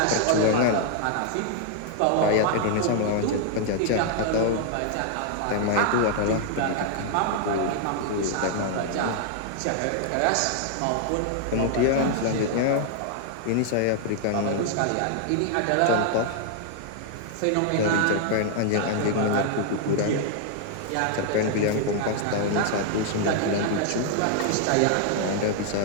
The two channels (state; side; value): different; both; correlation 0.00